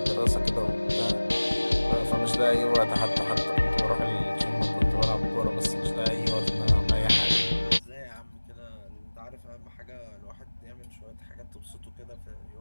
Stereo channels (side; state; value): both; inverted; correlation -1.00